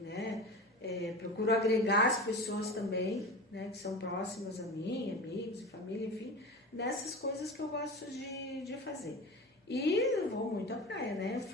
Procuro agregar as pessoas também, né? Que são próximas a mim, amigos e família, enfim, nessas coisas que eu gosto de fazer. E eu vou muito à praia, né?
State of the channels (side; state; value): both; normal; correlation 0.30